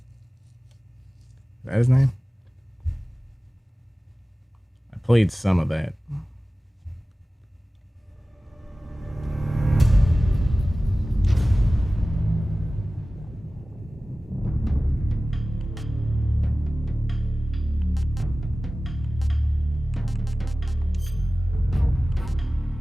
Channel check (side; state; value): both; normal; correlation 0.97